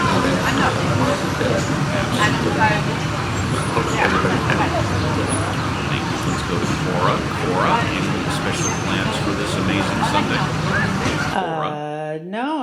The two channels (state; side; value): identical; both; correlation 1.00